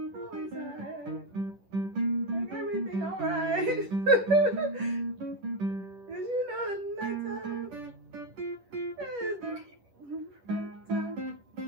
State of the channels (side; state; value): left; late; 10 ms